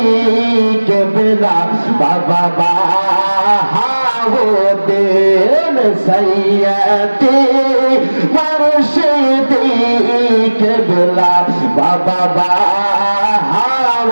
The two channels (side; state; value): both; inverted; correlation -1.00